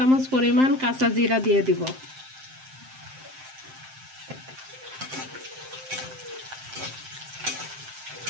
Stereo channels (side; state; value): left; late; 7.7 ms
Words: পরিমাণ কাঁচা জিরা দিয়ে দিব।